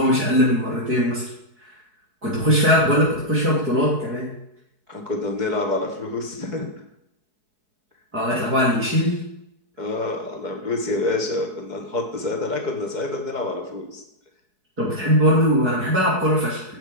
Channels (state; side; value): late; left; 4.7 ms